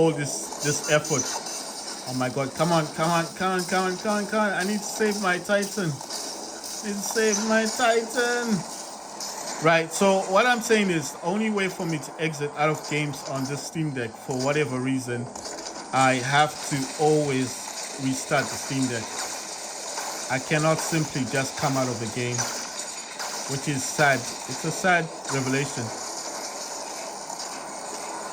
this effort. Oh my god, come on. I need to save my Titan. Right, so what I'm saying is, the only way for me to exit out of games on this Steam Deck, for whatever reason, I have to always restart the Steam Deck. I cannot simply just come out of the game, which is sad. It's a sad revelation.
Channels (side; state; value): both; identical; correlation 1.00